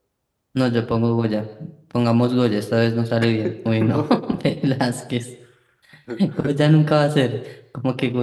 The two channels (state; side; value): identical; both; correlation 1.00